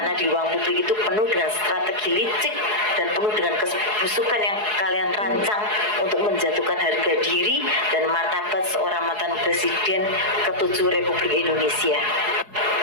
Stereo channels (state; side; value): late; left; 4.7 ms